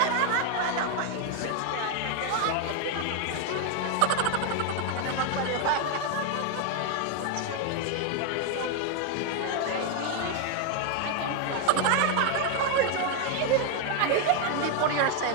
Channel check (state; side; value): different; both; correlation 0.01